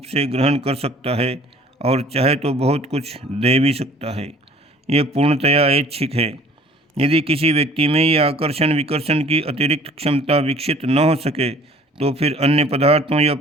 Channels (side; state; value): both; normal; correlation 0.52